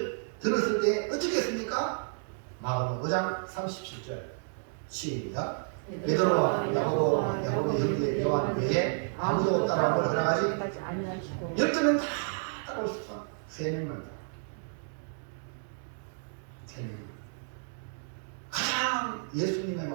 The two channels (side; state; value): left; silent; digital silence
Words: 들었을 때 어떻게 했습니까? 마가복음 5장 37절 시작. 베드로와 야고보의 형제 요한 외에 아무도 따라오걸 허락하지 아니하시고 12명 다 따라올 수 있어. 3명만 다. 3명. 가장 예수님의